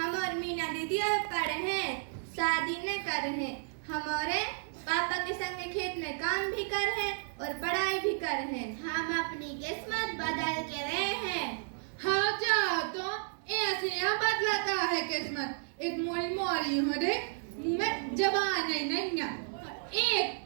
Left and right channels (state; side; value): silent; left; digital silence